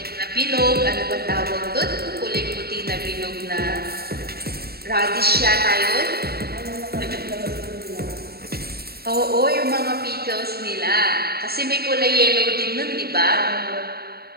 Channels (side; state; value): left; late; 0.45 ms